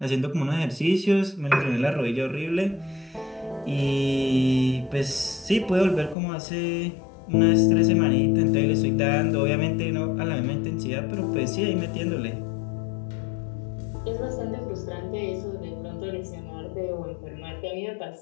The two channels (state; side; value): drops out; right; at 6.2 s